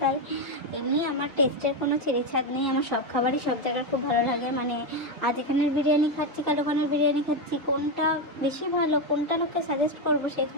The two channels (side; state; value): both; normal; correlation 0.09